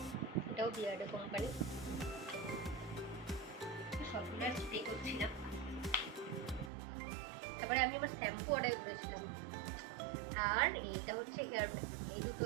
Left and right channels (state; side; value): drops out; left; at 6.7 s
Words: এটাও বিয়ার্ড কোম্পানি, সবগুলো স্প্রে করছিলাম। তারপরে আমি আমার শ্যাম্পু অর্ডার করেছিলাম, আর এইটা হচ্ছে হেয়ার প্যাক। এই দুটো